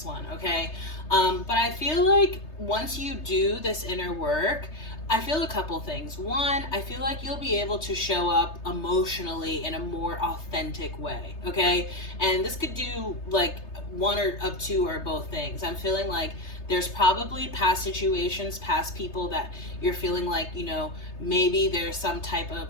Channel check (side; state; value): right; late; 3.3 ms